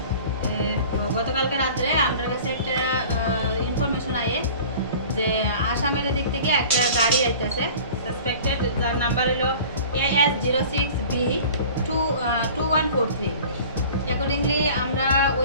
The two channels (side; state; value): both; inverted; correlation -0.43